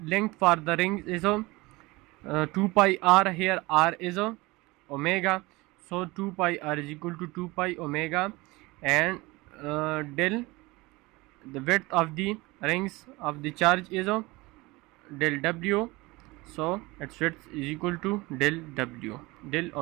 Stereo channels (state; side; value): quieter; left; 22.4 dB